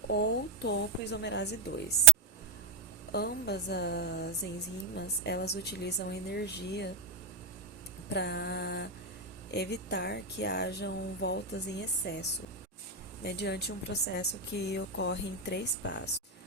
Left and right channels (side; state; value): left; quieter; 4.4 dB